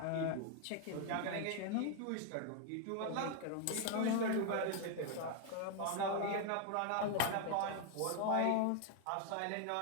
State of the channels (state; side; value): different; both; correlation 0.01